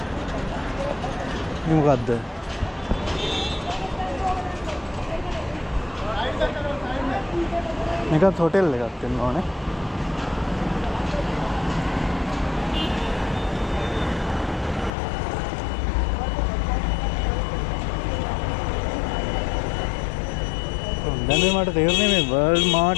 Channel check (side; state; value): right; drops out; at 14.9 s